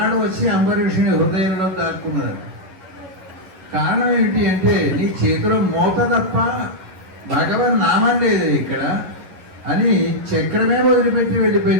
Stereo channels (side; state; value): left; late; 11 ms